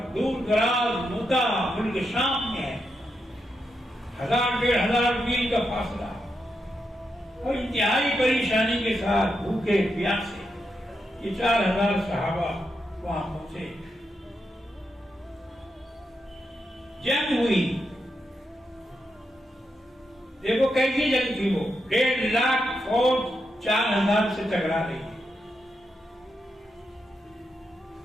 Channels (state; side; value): normal; both; correlation 0.84